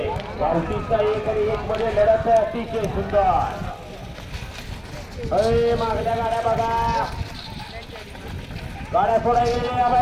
गावठीचा एक आणि एक मध्ये लढत आहे. अतिशय सुंदर. अरे मागल्या गाड्या बघा, गाड्या सोडा गेलेल्या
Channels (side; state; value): both; identical; correlation 1.00